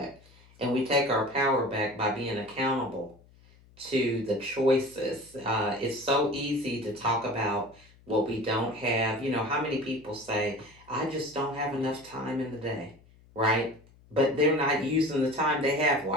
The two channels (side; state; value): left; noise; hum, 27 dB below the sound